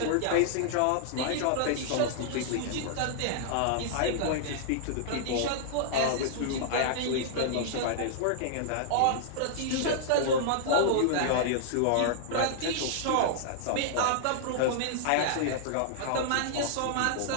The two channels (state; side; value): different; both; correlation -0.01